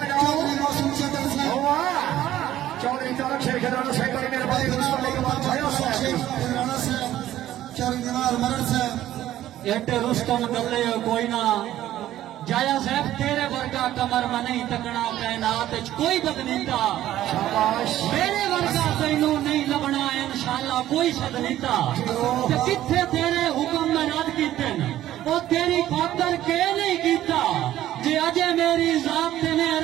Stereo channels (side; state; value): left; quieter; 13.2 dB